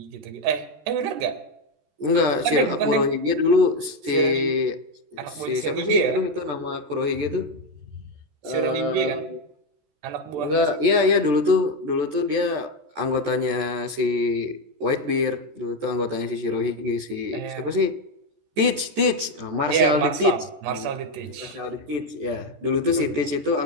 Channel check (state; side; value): late; left; 14 ms